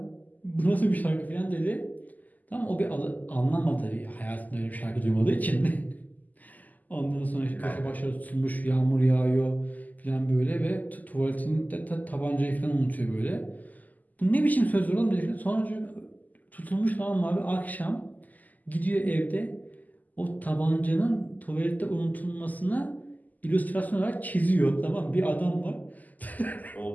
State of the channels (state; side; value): late; right; 0.081 ms